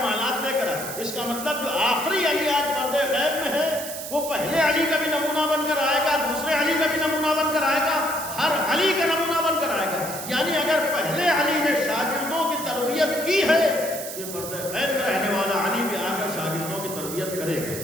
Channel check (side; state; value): right; noise; hiss, 8 dB below the sound